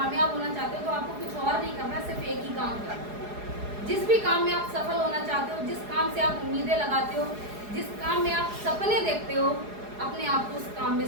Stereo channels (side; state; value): left; late; 4.8 ms